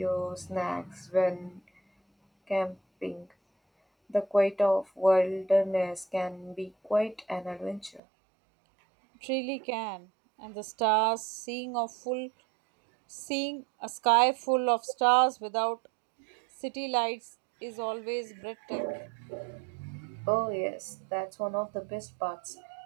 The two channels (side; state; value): left; drops out; at 8.0 s